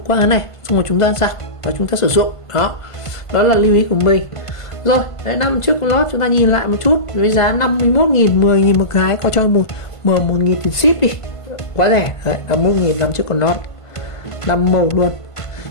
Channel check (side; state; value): right; late; 1.5 ms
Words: qua cái này xong rồi chúng ta giặt và chúng ta sử dụng đó. Đó là lưu ý của mình. Rồi, đấy, năm chiếc lót chúng ta nhìn lại một chút với giá 51.000, 10.000 một cái, có cho một 1.000 tiền ship đi, quá rẻ. Đấy, 51.000 năm chiếc con lót 5 màu luôn,